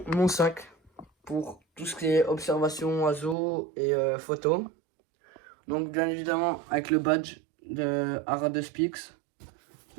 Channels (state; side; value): drops out; left; at 3.4 s